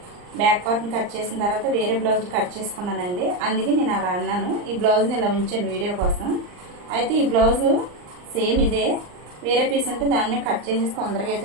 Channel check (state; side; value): late; left; 39 ms